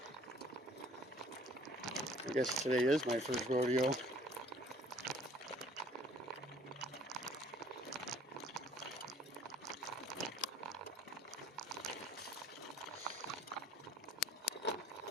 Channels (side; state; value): both; normal; correlation 0.55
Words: I guess today is my first rodeo.